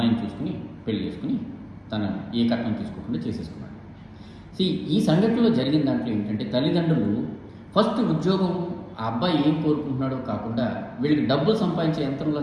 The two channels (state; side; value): identical; both; correlation 1.00